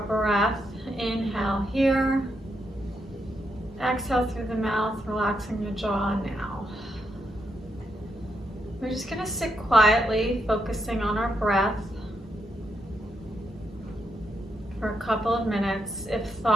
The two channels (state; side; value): normal; both; correlation 0.81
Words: breath. Inhale here. Exhale through the mouth, relaxing the jaw now. We're just going to sit quietly, focusing on our breath for a couple of minutes. If